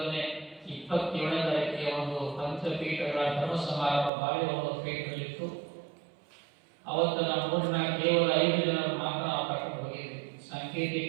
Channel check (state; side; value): drops out; left; at 4.1 s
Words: 27ನೇ ತಾರೀಕಿಗೆ ಒಂದು ಪಂಚಪೀಠಗಳ ಧರ್ಮ ಸಮಾರಂಭ ಬಾಳೆಹೊನ್ನೂರ ಪೀಠದಲ್ಲಿತ್ತು. ಅವತ್ತು ನಮ್ಮ ಊರಿನ ಕೇವಲ 5 ಜನರು ಮಾತ್ರ ನಾವು ಕರ್ಕೊಂಡು ಹೋಗಿದ್ವಿ.